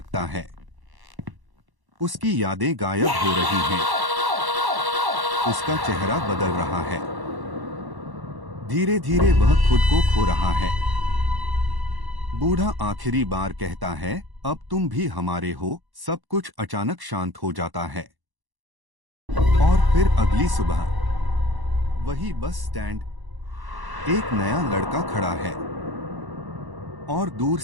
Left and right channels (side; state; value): left; late; 1.1 ms